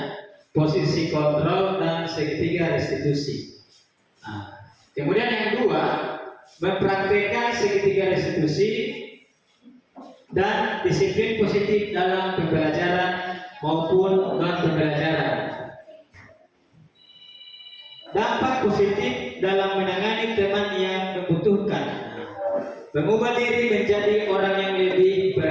posisi kontrol, dan segitiga restitusi. Kemudian yang kedua, mempraktikkan segitiga restitusi dan disiplin positif dalam pembelajaran maupun non pembelajaran. Dampak positif dalam menangani teman yang membutuhkan, mengubah diri menjadi orang yang lebih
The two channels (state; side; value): identical; both; correlation 1.00